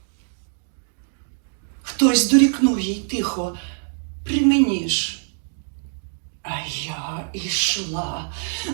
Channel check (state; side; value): silent; left; digital silence